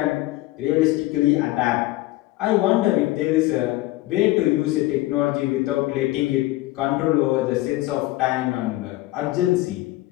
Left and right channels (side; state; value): right; quieter; 18.1 dB